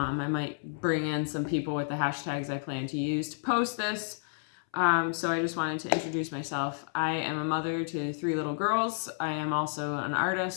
might bring in some people with the hashtags I plan to use to post this. So I just wanted to introduce myself. I am a mother to 3 little girls. I am also an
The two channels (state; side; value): silent; right; 57 dB below the other